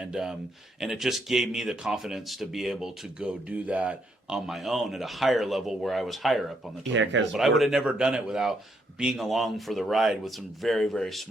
it just gave me the confidence to be able to go do that on my own at a higher level where I was higher up on the totem pole. But I would have never done it without being along for the ride with some very, very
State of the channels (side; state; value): both; normal; correlation 0.75